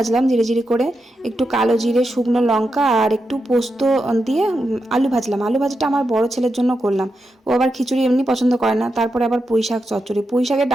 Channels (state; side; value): normal; both; correlation 0.87